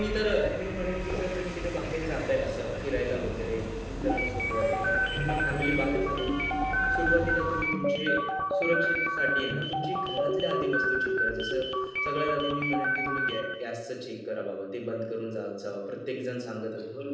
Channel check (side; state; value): both; identical; correlation 1.00